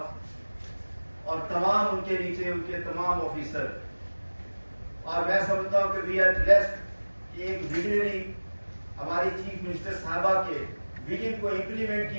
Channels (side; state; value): both; inverted; correlation -1.00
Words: اور تمام ان کے نیچے ان کے تمام آفیسر۔ اور میں سمجھتا ہوں کہ وی آر بلیسڈ کہ ایک ویژنری ہماری چیف منسٹر صاحبہ کے ویژن کو امپلیمنٹ